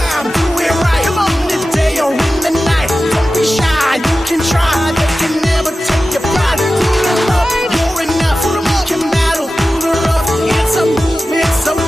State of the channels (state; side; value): normal; both; correlation 0.94